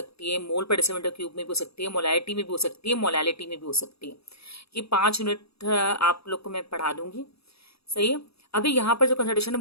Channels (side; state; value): right; late; 0.77 ms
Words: है, मोल पर डेसीमीटर क्यूब में भी हो सकती है, मोलैलिटी में भी हो सकती है, मोलैलिटी में भी हो सकती है। ये 5 यूनिट आप लोग को मैं पढ़ा दूंगी, सही है। अभी यहाँ पर जो कंसंट्रेशन है